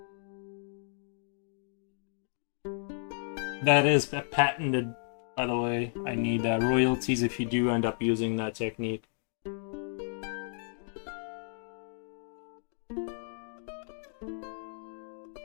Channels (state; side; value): silent; right; digital silence